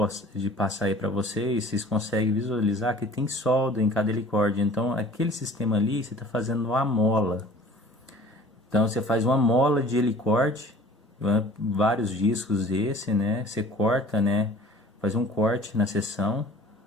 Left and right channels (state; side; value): normal; both; correlation 0.47